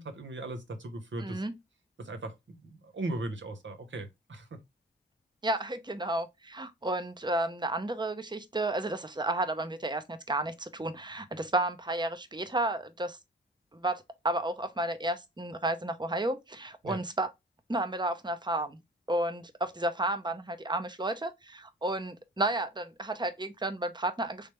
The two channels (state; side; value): normal; both; correlation 0.41